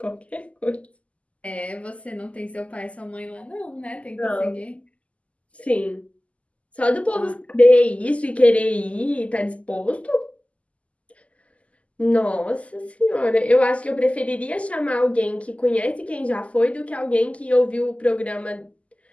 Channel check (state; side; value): late; right; 0.065 ms